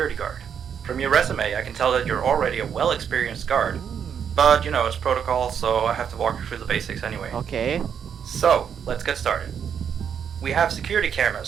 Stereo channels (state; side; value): quieter; left; 7.8 dB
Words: guard. From your resume, I can tell that you're already a well-experienced guard. But, it's protocol, so I have to walk you through the basics anyway. Okay. So, let's get started. We have security